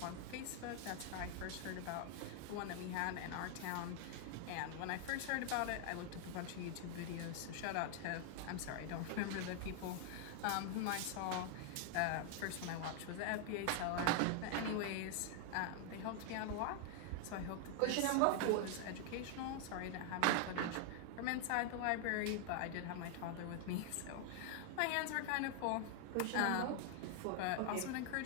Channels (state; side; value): different; both; correlation 0.00